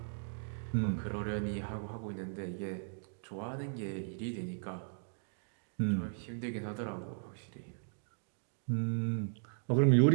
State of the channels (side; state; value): left; silent; digital silence